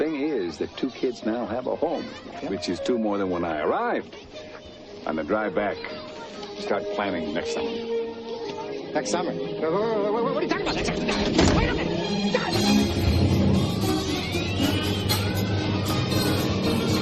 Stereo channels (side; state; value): both; identical; correlation 1.00